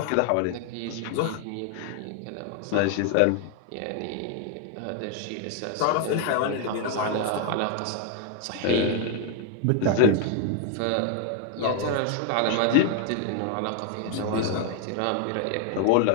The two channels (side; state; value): both; different; correlation 0.00